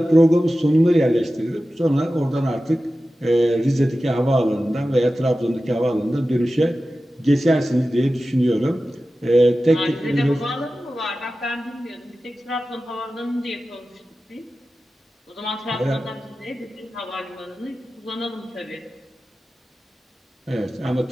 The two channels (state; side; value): normal; both; correlation 0.94